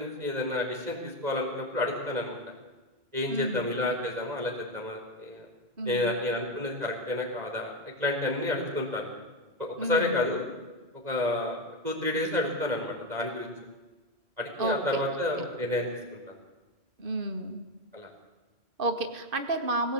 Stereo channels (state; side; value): late; left; 1.9 ms